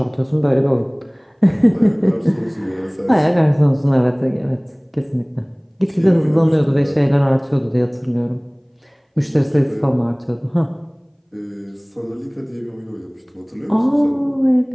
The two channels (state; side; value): identical; both; correlation 1.00